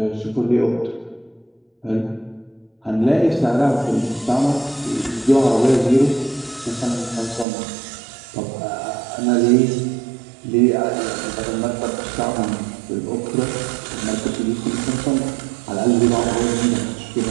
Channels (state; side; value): drops out; left; at 7.5 s